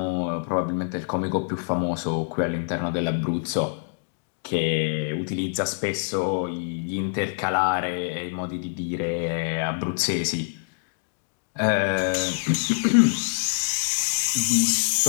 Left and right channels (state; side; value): silent; right; digital silence